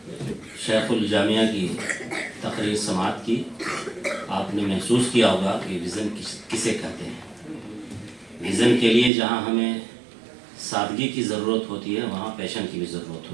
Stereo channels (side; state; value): left; drops out; at 9.1 s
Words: شیخ الجامعہ کی تقریر سماعت کی. آپ نے محسوس کیا ہوگا کہ ویژن کسے کہتے ہیں. ویژن کے لیے جہاں ہمیں سادگی کی ضرورت ہوتی ہے وہاں پیشن کی بھی ضرورت